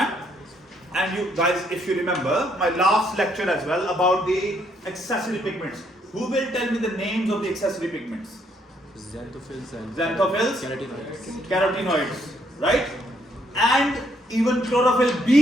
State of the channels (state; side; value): normal; both; correlation 0.71